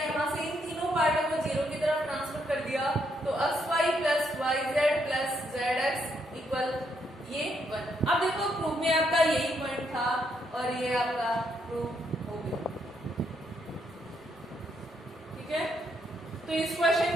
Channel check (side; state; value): both; normal; correlation 0.76